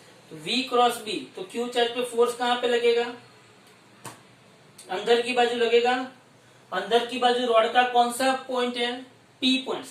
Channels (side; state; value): both; identical; correlation 1.00